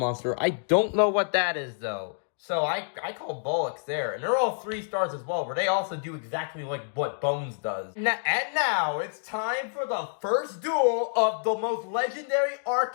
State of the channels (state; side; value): silent; right; digital silence